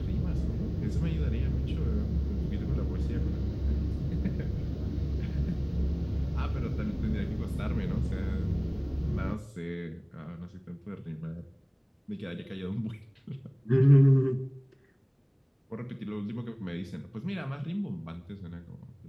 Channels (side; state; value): both; identical; correlation 1.00